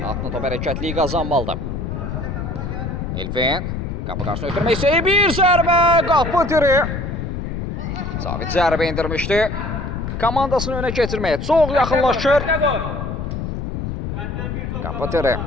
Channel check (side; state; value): left; noise; rumble, 4 dB below the sound